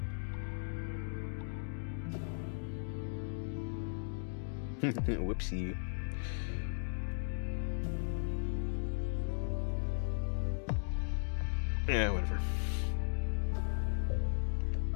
Whoopsie. Yeah, whatever.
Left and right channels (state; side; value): silent; right; digital silence